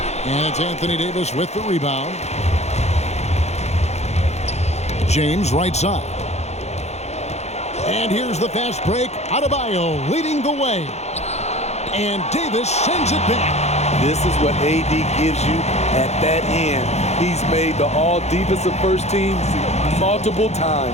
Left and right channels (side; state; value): right; late; 0.32 ms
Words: And it's Anthony Davis with the rebound. James right side. And here's the fast break. Adebayo leading the way. And Davis sends it back. This is what AD gives you at that end. He's made the all-defensive first teams multiple